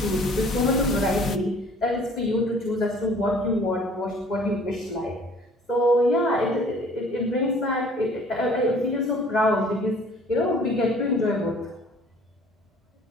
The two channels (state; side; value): normal; both; correlation 0.53